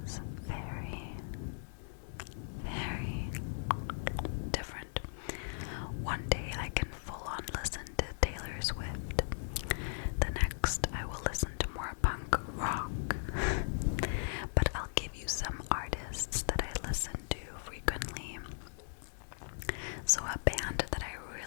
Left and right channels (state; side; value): silent; right; digital silence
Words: So a band that I